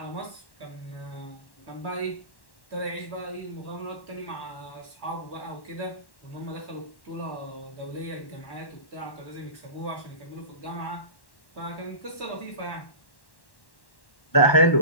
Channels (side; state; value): right; late; 1.1 ms